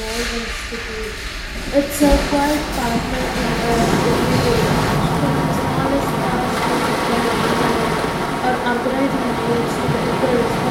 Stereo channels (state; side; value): identical; both; correlation 1.00